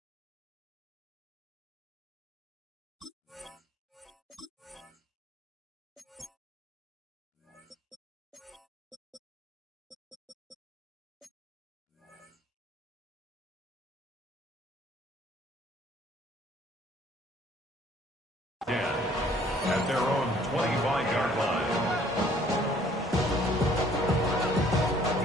At their own 25-yard line.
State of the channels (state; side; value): normal; both; correlation 0.59